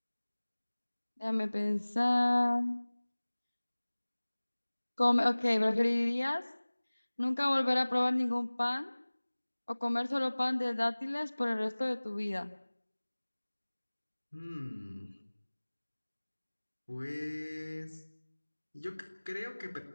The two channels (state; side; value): inverted; both; correlation -1.00